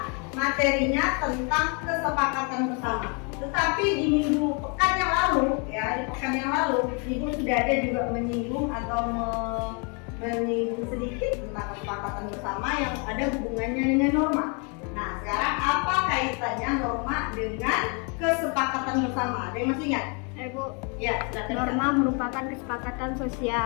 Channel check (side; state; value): right; quieter; 35.1 dB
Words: materinya tentang kesepakatan bersama. Tetapi di minggu pekan yang lalu, ya di pekan yang lalu, ibu sudah ada juga menyinggung atau menyinggung sedikit tentang kesepakatan bersama yang ada hubungannya dengan norma. Nah, sekarang apa kaitannya norma dengan kesepakatan bersama? Ada yang masih ingat? Bu, Ya, silakan. norma merupakan kesepakatan